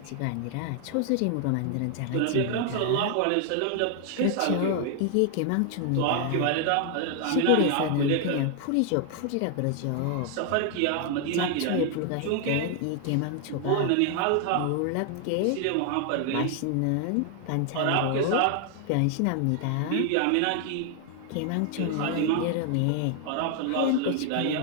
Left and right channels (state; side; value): different; both; correlation 0.00